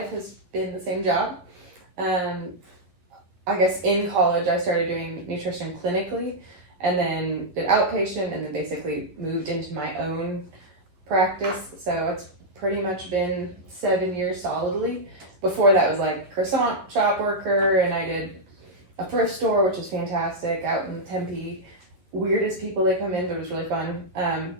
has been the same job. I guess in college, I started doing nutrition clinically and then did outpatient and then basically moved into my own practice. So it's pretty much been 7 years solidly. Before that was like croissant shop worker, and I did a thrift store, which was fantastic, out in Tempe. Weirdest people that come in, but it was really fun.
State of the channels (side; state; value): left; late; 11 ms